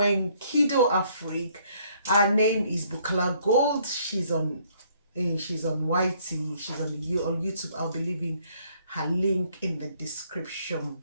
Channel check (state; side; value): inverted; both; correlation -0.65